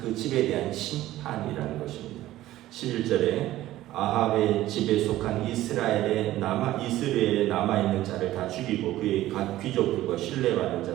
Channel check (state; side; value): quieter; left; 14.9 dB